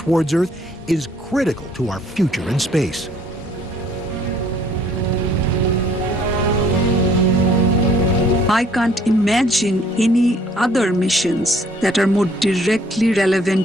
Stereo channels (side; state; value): both; normal; correlation 0.60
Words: Earth is critical to our future in space. I can't imagine any other missions that are more directly